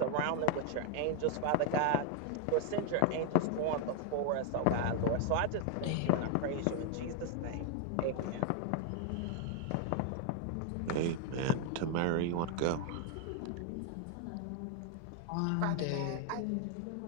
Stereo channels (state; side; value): different; both; correlation 0.00